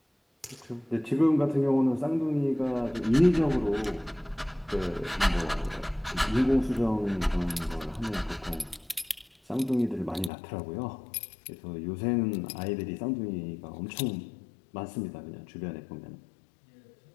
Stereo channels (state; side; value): drops out; right; at 10.3 s